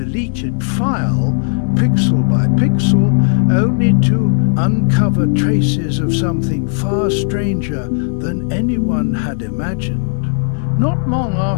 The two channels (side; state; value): right; silent; 56 dB below the other